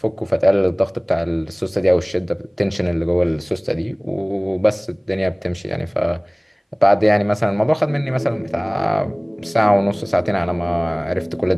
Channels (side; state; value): both; identical; correlation 1.00